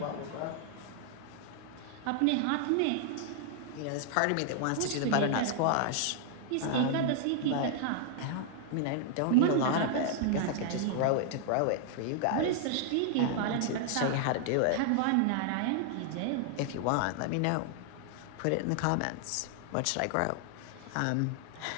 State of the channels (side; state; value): both; different; correlation 0.00